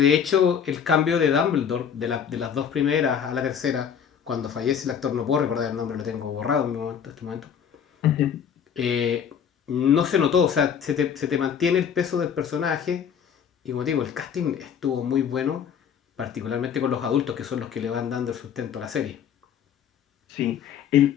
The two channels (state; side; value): quieter; right; 7.8 dB